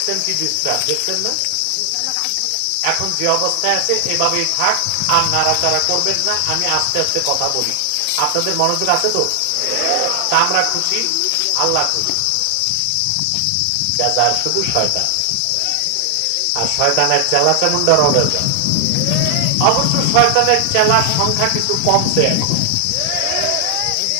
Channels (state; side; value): different; both; correlation 0.00